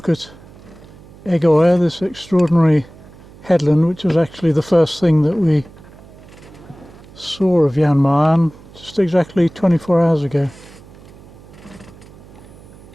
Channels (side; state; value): right; noise; hum, 21 dB below the sound